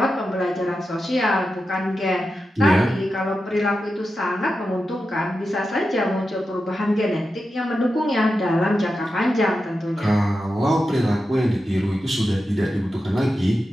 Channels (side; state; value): both; normal; correlation 0.90